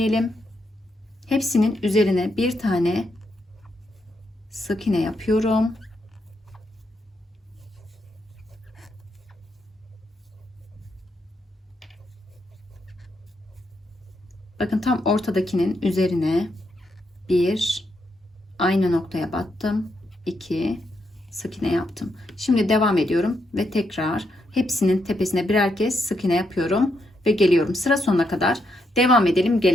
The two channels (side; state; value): both; normal; correlation 0.80